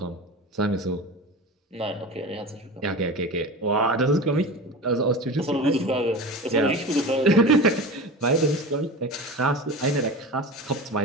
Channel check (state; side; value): normal; both; correlation 0.30